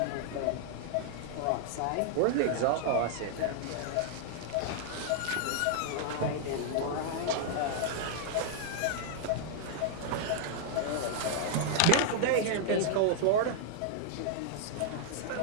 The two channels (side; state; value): both; different; correlation -0.01